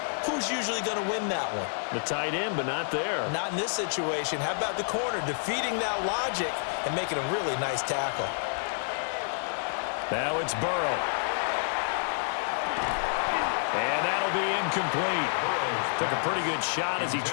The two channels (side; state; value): right; silent; 59 dB below the other